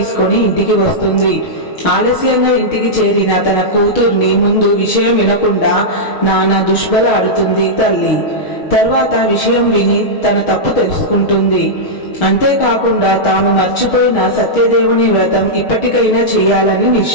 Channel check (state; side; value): late; right; 6.4 ms